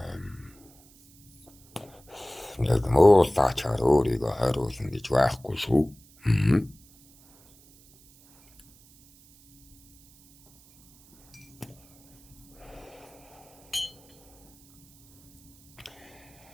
Нэг муулаачаар өөрийгөө хариулна гэж байхгүй шүү.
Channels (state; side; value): noise; right; hiss, 27 dB below the sound